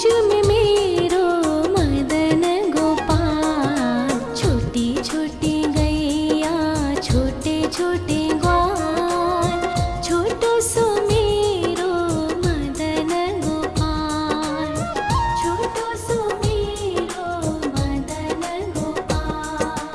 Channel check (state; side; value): identical; both; correlation 1.00